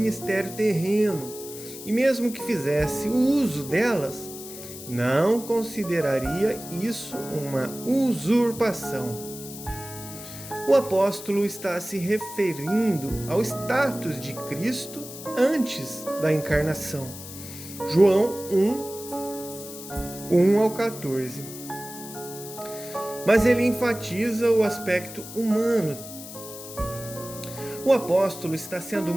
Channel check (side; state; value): left; noise; hiss, 13 dB below the sound